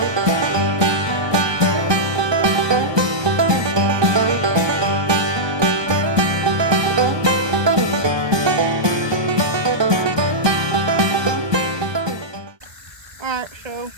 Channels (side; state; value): left; late; 1.2 ms